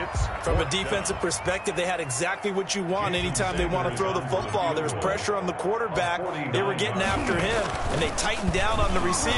From a defensive perspective, they had exactly what you want anytime they want to throw the football. There was pressure on the quarterback. They were getting after him, and they tightened down on the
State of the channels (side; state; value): both; identical; correlation 1.00